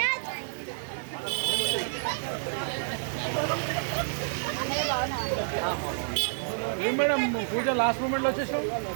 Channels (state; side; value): silent; left; digital silence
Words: ఏం మేడం పూజ లాస్ట్ మూమెంట్లో వచ్చేసావు